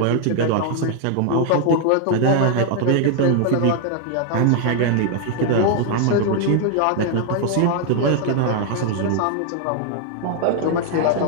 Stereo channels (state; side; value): different; both; correlation 0.00